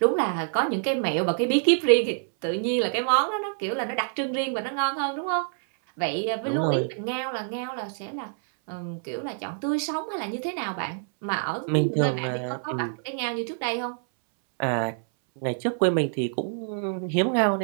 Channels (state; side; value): silent; left; 61 dB below the other